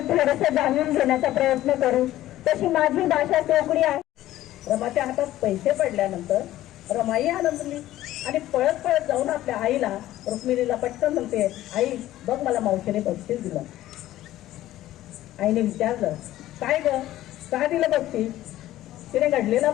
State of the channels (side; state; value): right; quieter; 14.5 dB